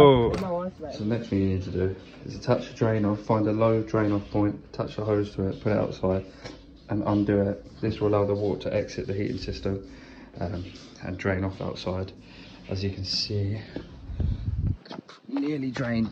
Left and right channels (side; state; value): both; identical; correlation 1.00